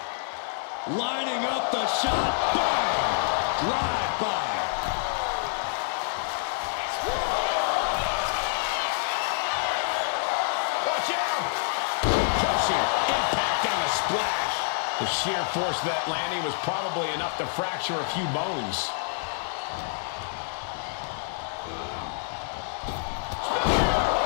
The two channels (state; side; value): silent; right; 60 dB below the other